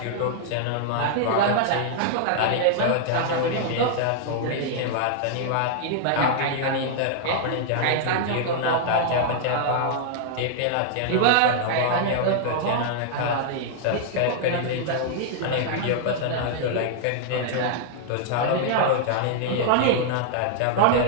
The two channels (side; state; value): both; different; correlation -0.01